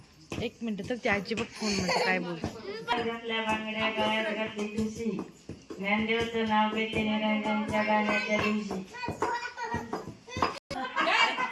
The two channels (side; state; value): both; identical; correlation 1.00